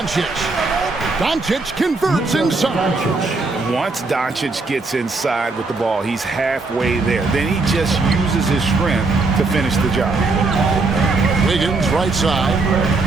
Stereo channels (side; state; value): left; quieter; 3.6 dB